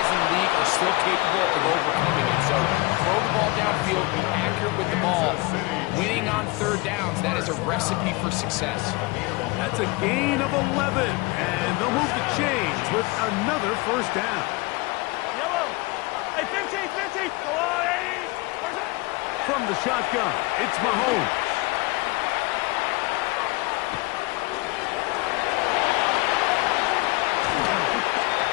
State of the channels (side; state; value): right; quieter; 23.8 dB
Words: in the league are still capable of overcoming it. So throw the ball downfield, be accurate with the ball. Winning on third downs, that is a recipe for success. That's a gain of 11, and they'll move the chains with another first down. Hey, 50. Go on, 80. From the shotgun, it's Mahomes.